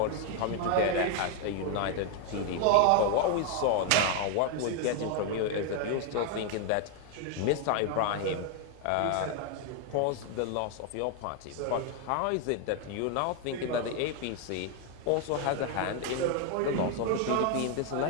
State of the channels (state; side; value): different; both; correlation 0.01